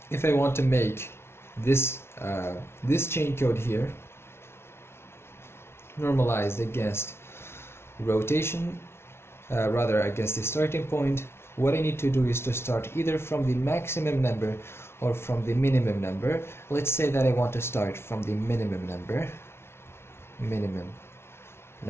I want to make this chain code here normalized against rotation, rather against the starting point, what I need to do is to start either from the maximum number or from the minimum number. Let's say that I want to start from the minimum number.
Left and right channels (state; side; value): late; right; 0.12 ms